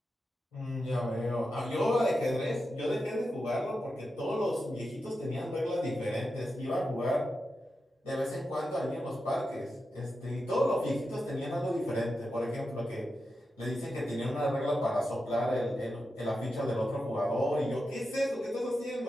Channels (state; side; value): normal; both; correlation 0.89